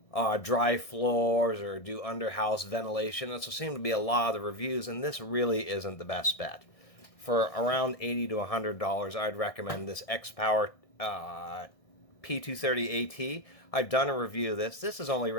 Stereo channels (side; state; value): right; late; 1.6 ms